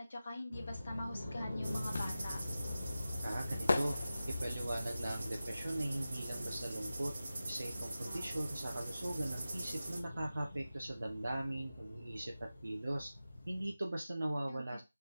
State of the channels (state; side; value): inverted; both; correlation -0.94